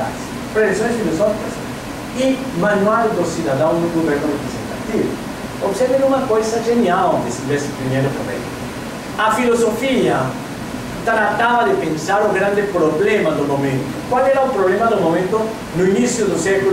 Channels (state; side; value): identical; both; correlation 1.00